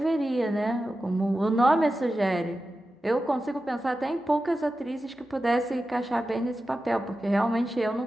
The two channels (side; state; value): both; normal; correlation 0.92